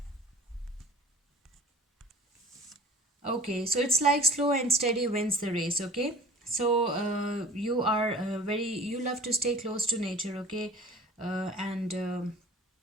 okay, so it's like slow and steady wins the race. Okay, so you are very, you love to stay close to nature. Okay, and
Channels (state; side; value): normal; both; correlation 0.44